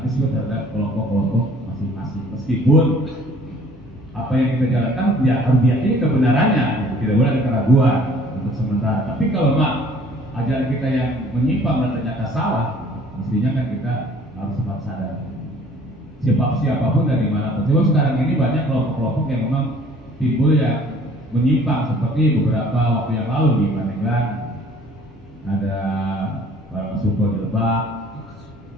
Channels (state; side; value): normal; both; correlation 0.54